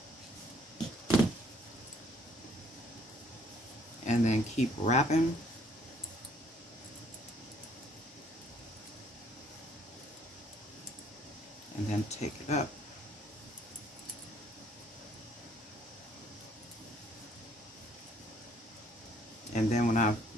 And then keep wrapping. And then take it up. And then when I'm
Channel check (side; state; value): both; normal; correlation 0.63